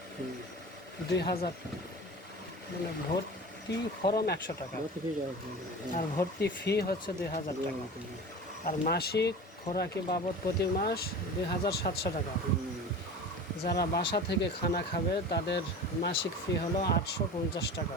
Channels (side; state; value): both; normal; correlation 0.35